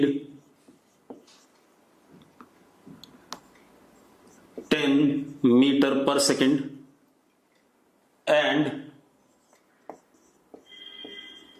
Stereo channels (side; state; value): both; identical; correlation 1.00